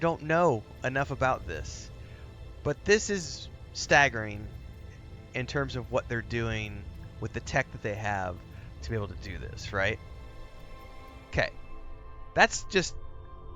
know enough about this. But this is staggering in terms of what they're doing with the tech that they have to be able to do this, right? Okay. That's just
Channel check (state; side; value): identical; both; correlation 1.00